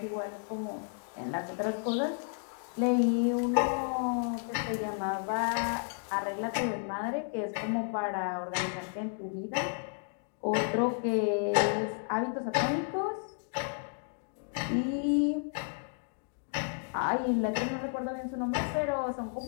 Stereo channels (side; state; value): right; silent; 56 dB below the other